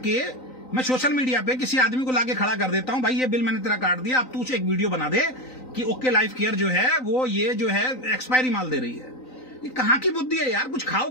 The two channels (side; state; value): right; late; 3.9 ms